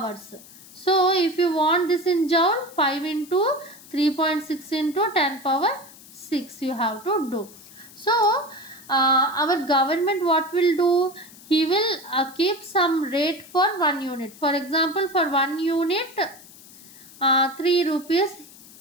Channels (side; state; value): left; noise; hiss, 20 dB below the sound